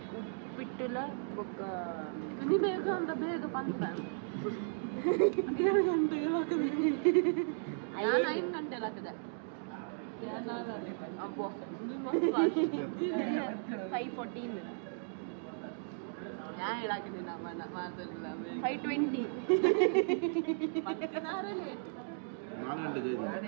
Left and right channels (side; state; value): left; silent; digital silence